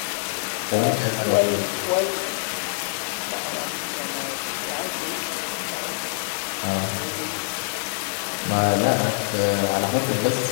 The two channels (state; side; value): silent; right; digital silence